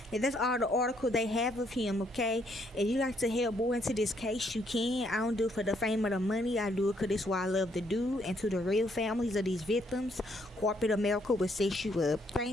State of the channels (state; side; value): normal; both; correlation 0.71